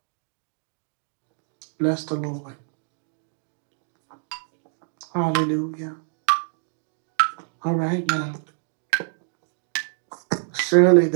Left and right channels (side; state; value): left; silent; digital silence